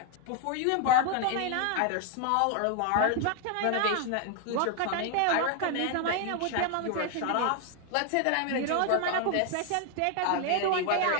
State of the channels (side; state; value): both; different; correlation 0.00